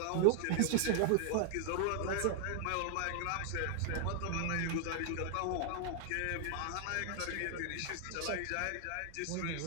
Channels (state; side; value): different; both; correlation 0.00